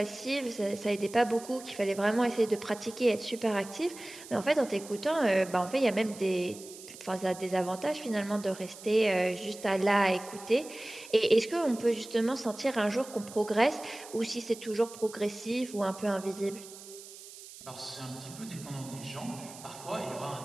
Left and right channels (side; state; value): right; noise; hiss, 16 dB below the sound